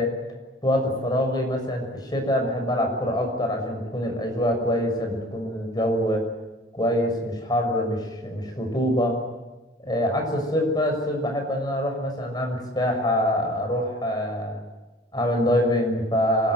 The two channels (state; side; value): normal; both; correlation 0.46